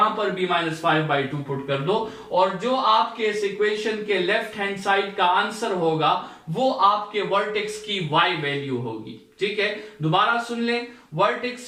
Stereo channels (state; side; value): identical; both; correlation 1.00